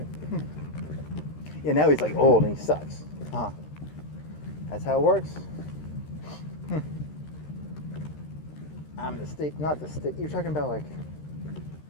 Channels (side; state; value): right; late; 13 ms